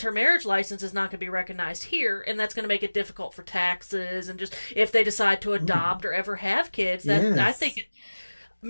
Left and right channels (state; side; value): inverted; both; correlation -1.00